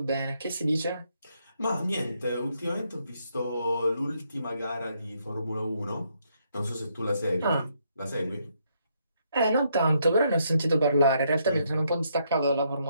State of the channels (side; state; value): both; inverted; correlation -0.74